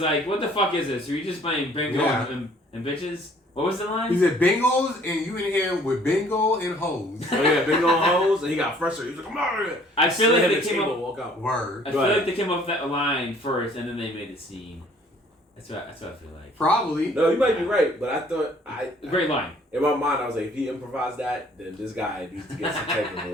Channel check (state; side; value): normal; both; correlation 0.57